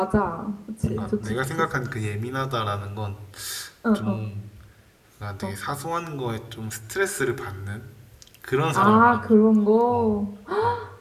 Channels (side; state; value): both; identical; correlation 1.00